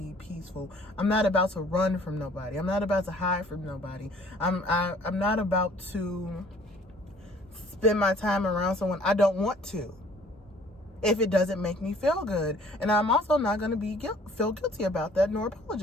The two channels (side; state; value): both; normal; correlation 0.55